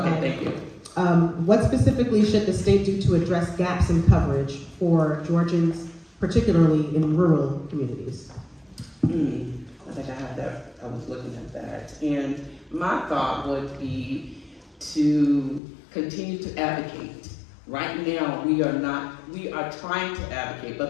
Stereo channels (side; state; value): right; drops out; at 15.6 s